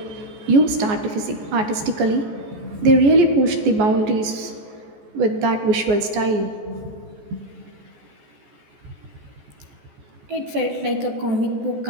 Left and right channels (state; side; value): late; left; 14 ms